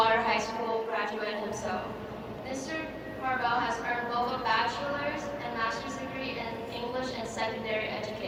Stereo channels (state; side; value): identical; both; correlation 1.00